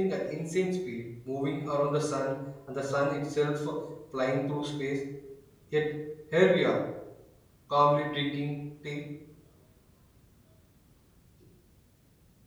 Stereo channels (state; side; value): identical; both; correlation 1.00